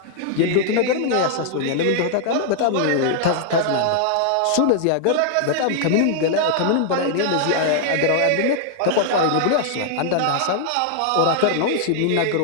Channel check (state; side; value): different; both; correlation 0.00